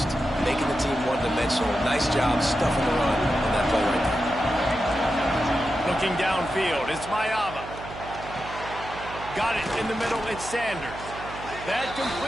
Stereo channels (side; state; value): right; noise; hum, 13 dB below the sound